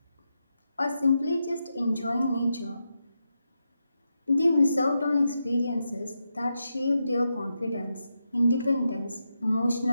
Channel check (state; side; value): inverted; both; correlation -0.86